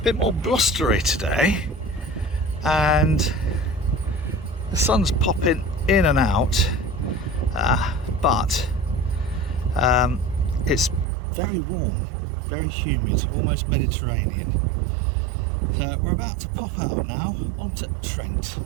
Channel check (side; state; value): left; drops out; at 11.1 s